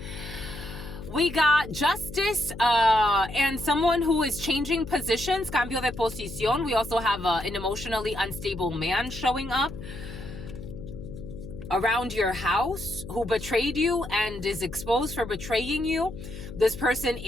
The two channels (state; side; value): noise; left; hum, 12 dB below the sound